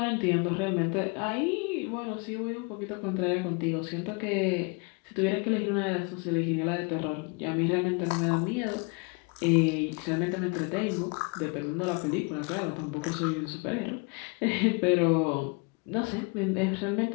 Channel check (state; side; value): quieter; right; 32.4 dB